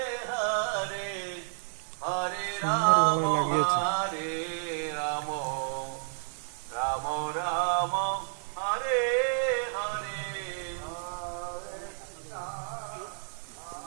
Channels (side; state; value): left; silent; 57 dB below the other